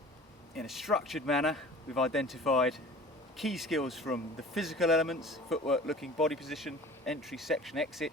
in a structured manner. We've identified key skills from the physical elements: footwork, looking, body position, entry, section, exit,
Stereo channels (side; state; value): both; normal; correlation 0.42